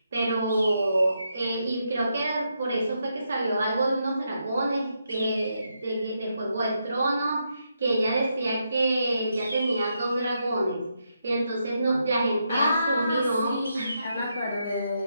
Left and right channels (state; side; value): inverted; both; correlation -0.81